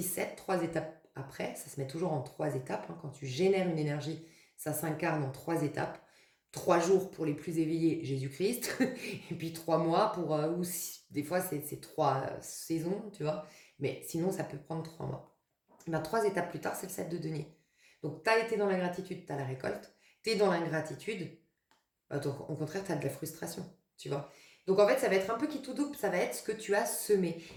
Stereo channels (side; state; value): both; identical; correlation 1.00